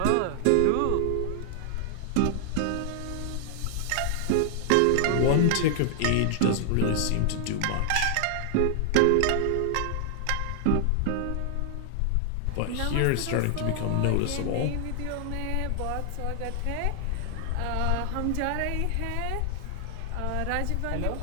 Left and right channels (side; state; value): both; different; correlation 0.00